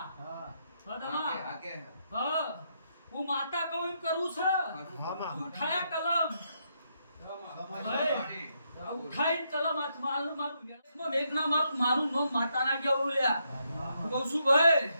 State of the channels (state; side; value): inverted; both; correlation -0.78